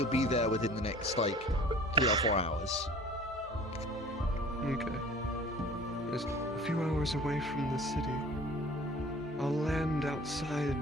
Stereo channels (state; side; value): normal; both; correlation 0.46